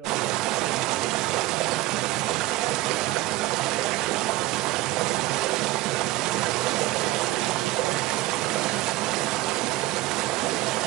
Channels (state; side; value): quieter; left; 17.6 dB